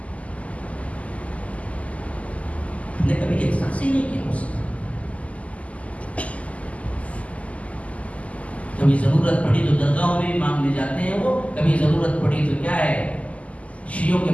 ہم نے کبھی احساس ہی نہیں کیا اس کا. کبھی ضرورت پڑی تو درگاہوں میں بھی مانگنے جاتے ہیں وہ، کبھی ضرورت پڑی تو کیا ہے شیعوں کے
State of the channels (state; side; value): late; right; 0.068 ms